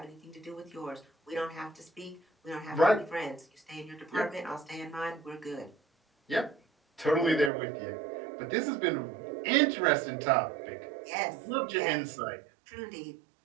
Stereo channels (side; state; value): left; drops out; at 7.5 s